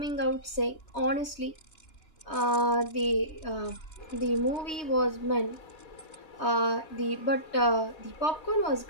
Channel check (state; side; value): late; right; 3.2 ms